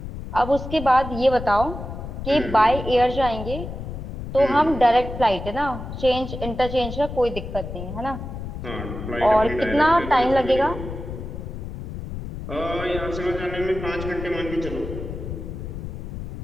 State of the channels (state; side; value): noise; left; rumble, 8 dB below the sound